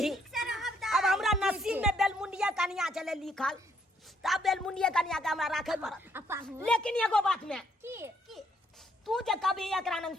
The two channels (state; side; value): normal; both; correlation 0.71